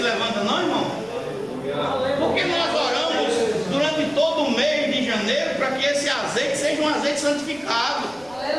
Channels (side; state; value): right; noise; rumble, 26 dB below the sound